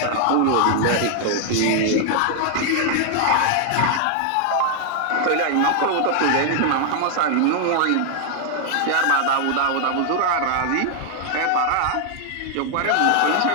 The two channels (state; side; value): different; both; correlation 0.00